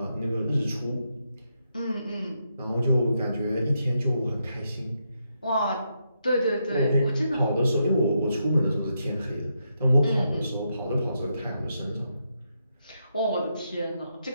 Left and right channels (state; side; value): inverted; both; correlation -0.81